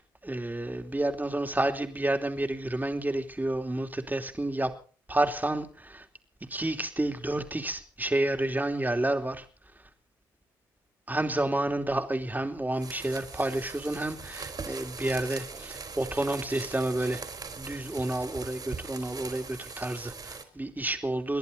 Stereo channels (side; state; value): both; normal; correlation 0.85